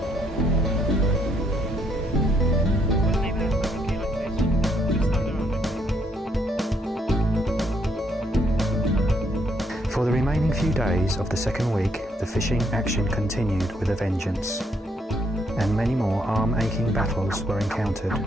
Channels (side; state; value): both; normal; correlation 0.72